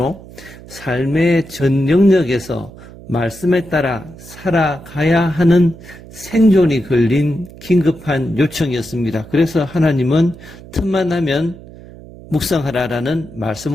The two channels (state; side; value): noise; right; hum, 18 dB below the sound